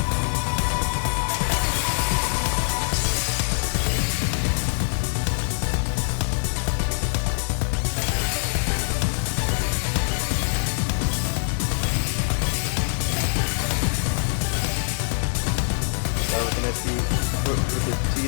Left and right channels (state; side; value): silent; right; digital silence